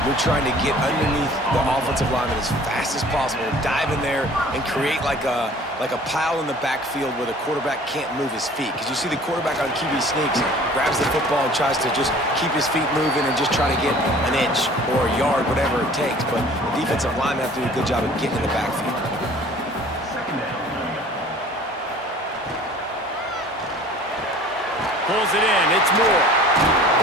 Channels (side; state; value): both; normal; correlation 0.49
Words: you're trying to get underneath the offensive lineman as fast as possible, dive in there and create like a pile in the backfield where the quarterback can't move his feet. Because you see the quarterback on QB sneaks, grabs the football and tries to just keep his feet moving and just try to get an inch or a yard, whatever it takes. But the defensive linemen have to do a good job of getting in the backfield. Pulls it in. It's Moore.